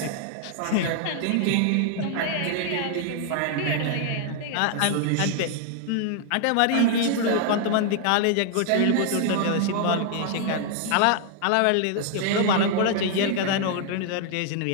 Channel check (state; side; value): different; both; correlation 0.00